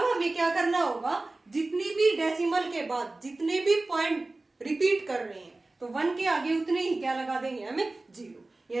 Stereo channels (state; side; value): quieter; left; 3.1 dB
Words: हमें क्या करना होगा जितनी भी डेसिमल के बाद जितने भी पॉइंट रिपीट कर रहे हैं तो 1 के आगे उतने ही क्या लगा देंगे हमें 0,